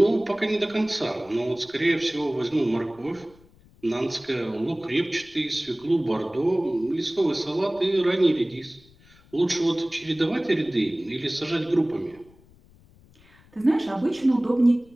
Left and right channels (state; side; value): noise; left; rumble, 28 dB below the sound